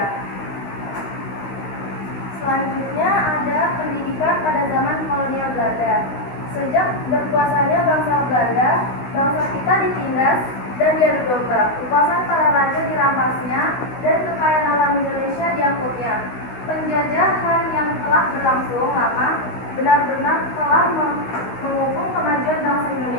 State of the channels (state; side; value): late; right; 16 ms